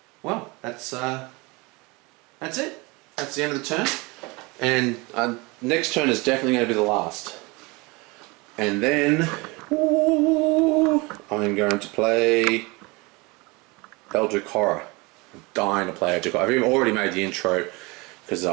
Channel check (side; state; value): left; quieter; 25.8 dB